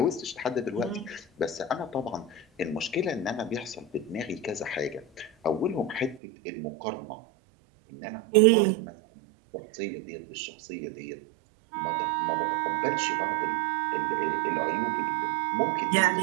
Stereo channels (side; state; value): left; drops out; at 6.2 s